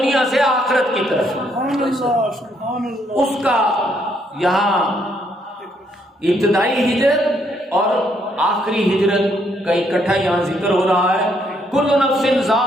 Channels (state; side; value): normal; both; correlation 0.71